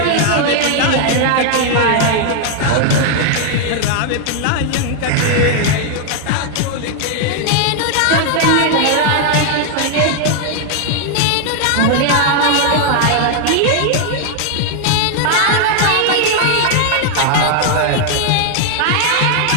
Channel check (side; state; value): both; different; correlation 0.00